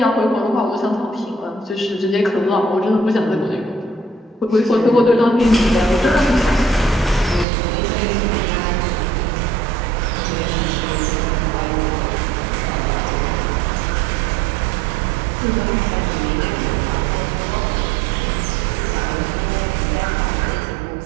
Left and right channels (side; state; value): left; drops out; at 7.5 s